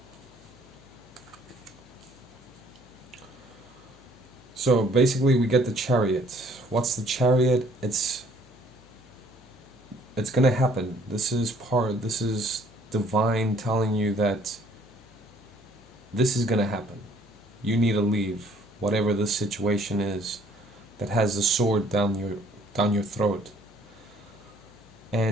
so basically we get the Chariot. What's the Chariot? It's gonna happen. This is divine telling you that this is gonna happen. You need to leave whatever this situation is that has the sword down your throat.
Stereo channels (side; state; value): left; noise; hum, 27 dB below the sound